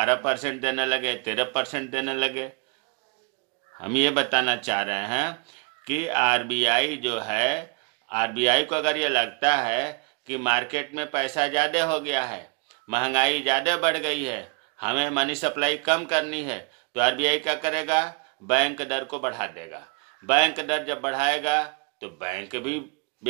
देने लगे, 13% देने लगे। हम ये बताना चाह रहे हैं कि आरबीआई जो है, आरबीआई को अगर ये लगता है कि मार्केट में पैसा ज़्यादा हो गया है, महंगाई ज़्यादा बढ़ गई है, हमें मनी सप्लाई कम करनी है, तो आरबीआई क्या करेगा, बैंक दर को बढ़ा देगा। बैंक दर जब बढ़ाएगा तो बैंक भी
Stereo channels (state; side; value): quieter; left; 32.0 dB